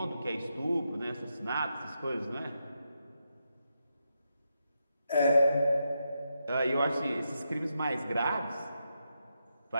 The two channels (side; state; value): both; inverted; correlation -0.84